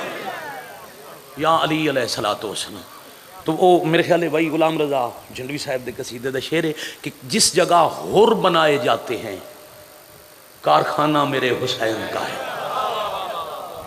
یا علی علیہ الصلوۃ والسلام. تو وہ میرے خیال ہے بھائی غلام رضا جھنڈوی صاحب دے قصیدے دا شعر ہے کہ جس جگہ ہور بنائے جاتے ہیں کارخانہ میرے حسین کا ہے.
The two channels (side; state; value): both; identical; correlation 1.00